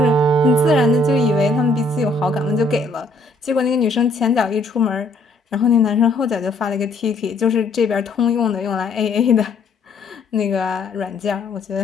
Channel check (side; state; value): right; quieter; 3.0 dB